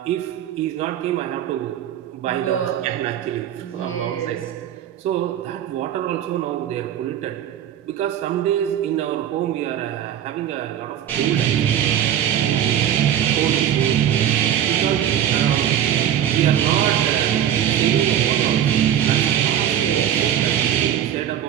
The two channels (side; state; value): left; quieter; 10.4 dB